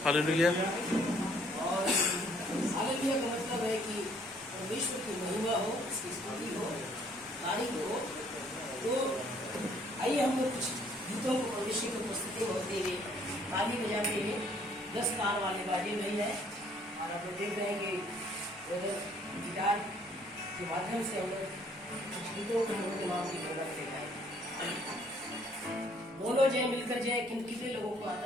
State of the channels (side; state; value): both; normal; correlation 0.62